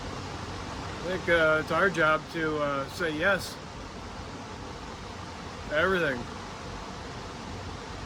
think it's our job to say yes to everything.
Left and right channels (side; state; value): both; identical; correlation 1.00